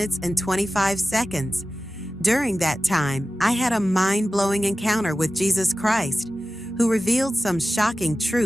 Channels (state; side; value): normal; both; correlation 0.95